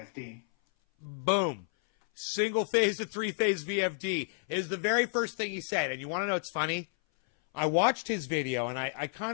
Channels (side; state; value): right; silent; 57 dB below the other